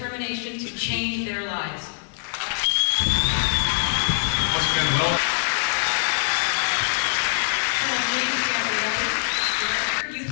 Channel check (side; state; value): right; silent; digital silence